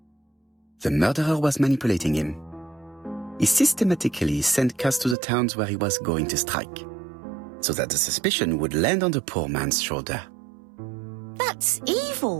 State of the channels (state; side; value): drops out; left; at 5.2 s